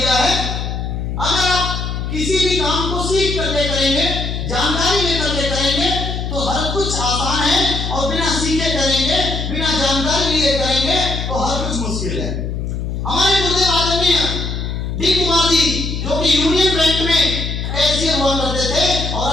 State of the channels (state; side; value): noise; left; hum, 4 dB below the sound